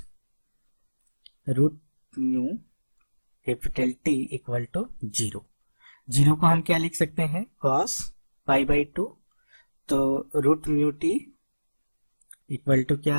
root mu capital T equal to 0। 0 को हम क्या लिख सकते हैं, कॉस पाई बाई 2, तो root mu t equal to क्या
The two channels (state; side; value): inverted; both; correlation -1.00